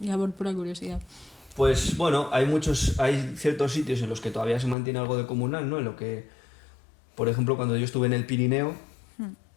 por pura curiosidad. Pues bueno, hay ciertos sitios en los que todavía se mantiene algo de comunal, ¿no? En lo que, por ejemplo, cuando yo estuve en el Pirineo,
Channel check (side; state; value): right; drops out; at 4.8 s